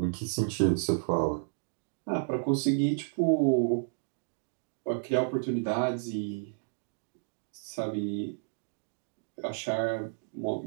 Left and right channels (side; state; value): left; silent; digital silence